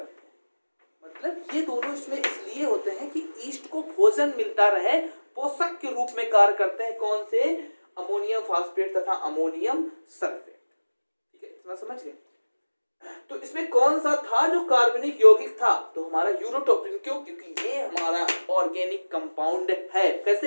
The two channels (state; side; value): inverted; both; correlation -1.00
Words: हैं। मतलब ये दोनों इसमें इसलिए होते हैं कि ईस्ट को भोजन मिलता रहे, पोषक के रूप में कार्य करते हैं। कौन से, अमोनियम फास्फेट तथा अमोनियम सल्फेट। ठीक है, इतना समझ गए। तो इसमें कौन सा था जो कार्बनिक यौगिक था, तो हमारा यूरोटोप्रीन। क्यों, क्योंकि ये हमारा ऑर्गेनिक कंपाउंड है।